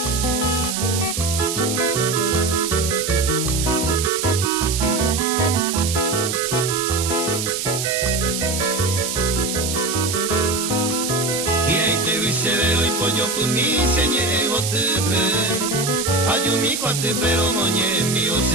kumi senye ego tepe ayumi kwate pero moñe mio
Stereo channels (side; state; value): right; noise; hiss, 3 dB below the sound